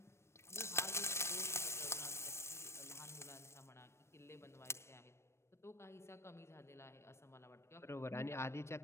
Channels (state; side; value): late; right; 0.13 ms